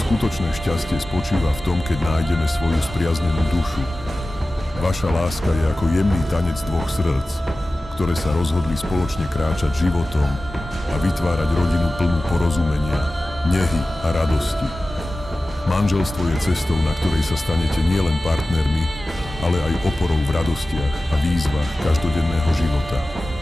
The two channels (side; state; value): both; normal; correlation 0.96